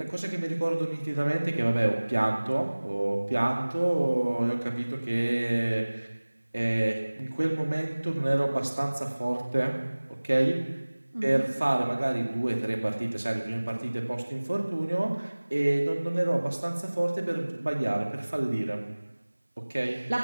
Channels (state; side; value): inverted; both; correlation -1.00